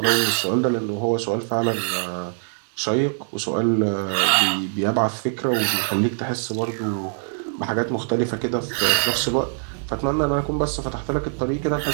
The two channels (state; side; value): silent; left; digital silence